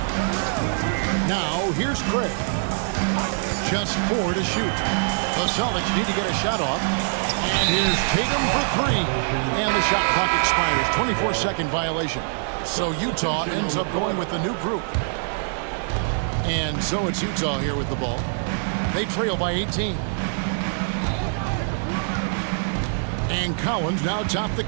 Now, here's Craig. Just 4 to shoot. The Celtics need to get a shot off. And here's Tatum for 3. And the shot clock expires. 24-second violation. So Utah ends up going with the new group. And so it's Utah here with the ball. They trail by 18. And Collins now top the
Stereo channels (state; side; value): silent; left; digital silence